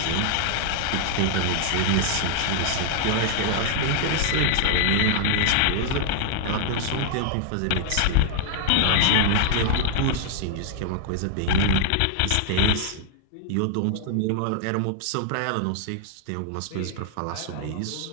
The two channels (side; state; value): both; different; correlation 0.00